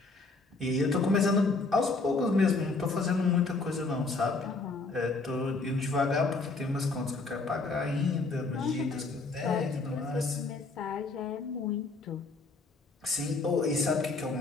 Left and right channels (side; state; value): right; quieter; 3.6 dB